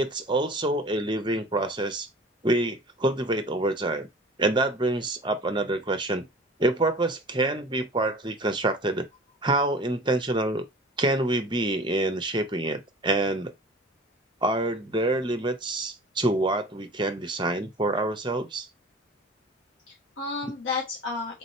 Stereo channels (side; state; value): both; normal; correlation 0.41